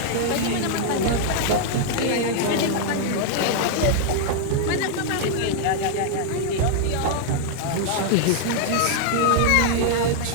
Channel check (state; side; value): different; both; correlation -0.01